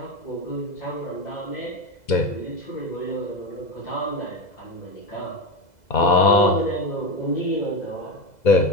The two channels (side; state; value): right; late; 2.0 ms